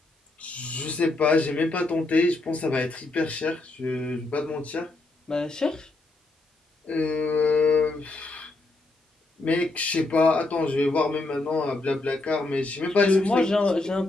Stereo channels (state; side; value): quieter; right; 3.0 dB